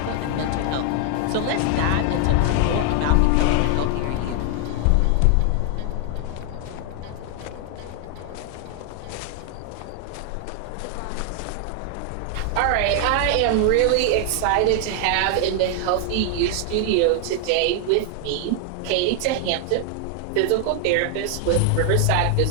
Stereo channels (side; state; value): both; different; correlation 0.00